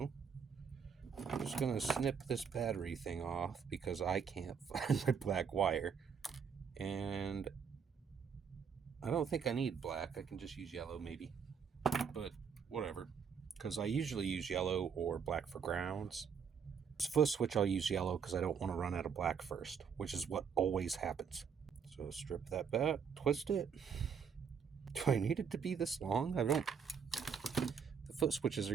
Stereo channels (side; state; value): left; quieter; 6.7 dB